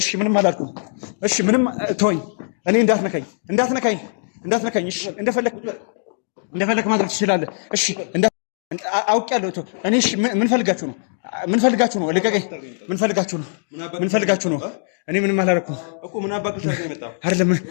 ምንም አላልኩም። እሺ ምንም ተወኝ። እኔ እንዳትነካኝ። እሺ እንደፈለክ ማድረግ ትችላለህ። እሺ አውቄያለሁ። እኔ እሺ ምን ፈልጋችሁ ነው? ልቀቀኝ። ምን ፈልጋችሁ ነው? እኔ ምንም አላደረኩም እኮ። ምን አባክህ ነው አይደለም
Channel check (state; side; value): silent; right; digital silence